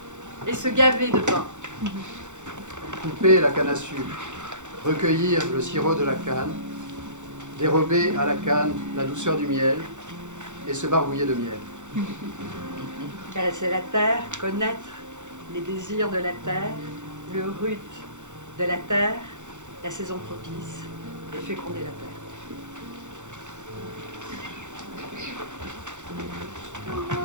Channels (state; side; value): late; left; 0.85 ms